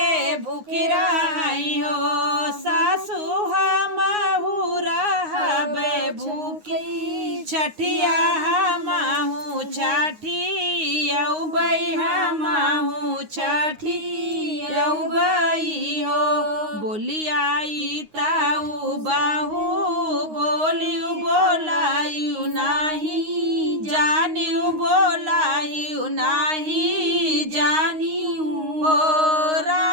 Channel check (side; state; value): left; late; 9.6 ms